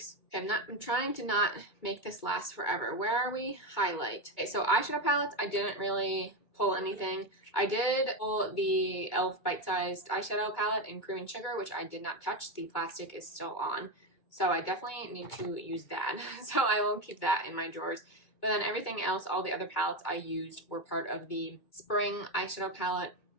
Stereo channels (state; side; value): late; right; 2.2 ms